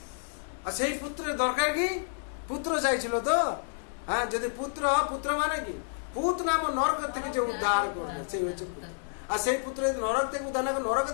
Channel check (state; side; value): silent; right; digital silence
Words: আর সেই পুত্রের দরকার কি? পুত্র চাইছিল তো, যদি পুত্র মানে কি? পুত নাম নরক থেকে যে উদ্ধার করবে সেই হচ্ছে পুত্র। আর সেই পুত্র যদি নরক থেকে উদ্ধার না করে